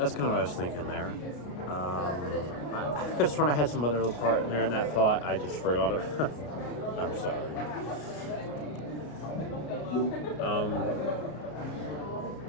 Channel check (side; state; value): right; late; 33 ms